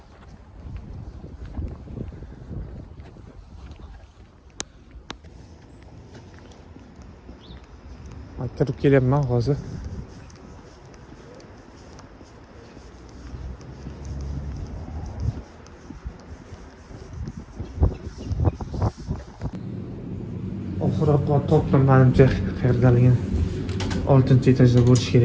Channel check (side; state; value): both; identical; correlation 1.00